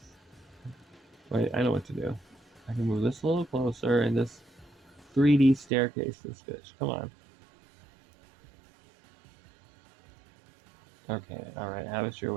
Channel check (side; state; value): left; drops out; at 5.7 s